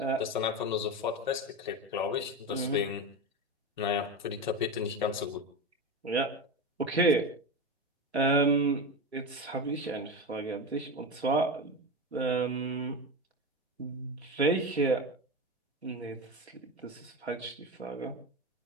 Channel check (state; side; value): normal; both; correlation 0.20